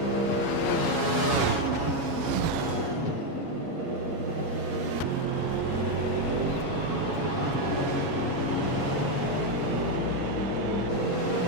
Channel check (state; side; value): late; left; 7.2 ms